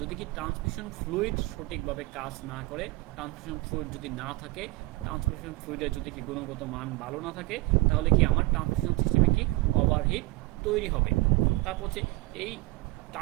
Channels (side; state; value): left; quieter; 22.0 dB